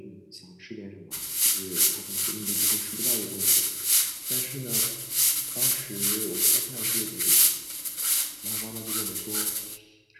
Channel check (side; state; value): both; identical; correlation 1.00